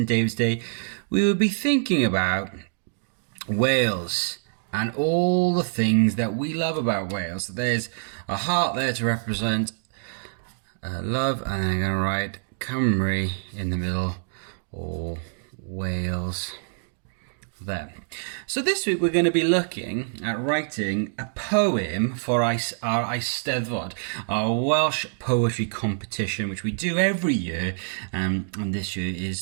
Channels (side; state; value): left; silent; digital silence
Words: David's Day, we would be thinking about Wales and all the things that we love about Wales. So there's a heart there to represent love, and I'm going to write Cymru in the middle, or Wales there. So this week we're going to be looking at writing a poem for our Eisteddfod, our Welsh poetry competition, which we do every year, and this year